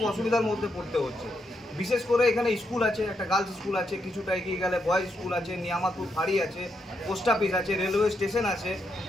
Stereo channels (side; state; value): both; normal; correlation 0.80